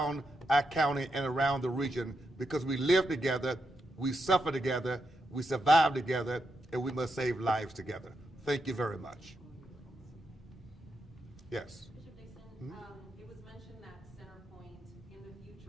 our county and around the region, because we live together, we suffer together, we survive together, and we must save lives together. Thank you very much. Yes. Bishop Dixon, it was mentioned that CenterPoint in the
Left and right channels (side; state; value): both; normal; correlation 0.83